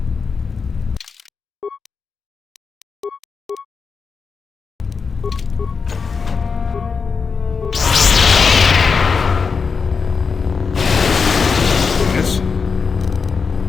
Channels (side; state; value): right; quieter; 5.3 dB